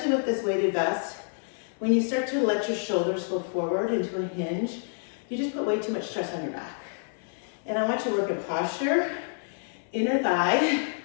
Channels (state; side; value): silent; right; 59 dB below the other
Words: with this weighted vest. When you start to let your shoulders go forward into a hinge, you just put way too much stress on your back. And I want you to work in posture, inner thigh,